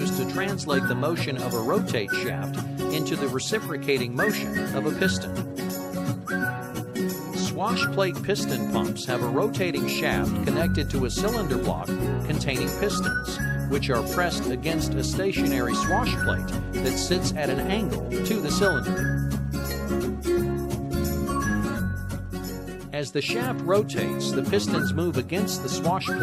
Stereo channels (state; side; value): identical; both; correlation 1.00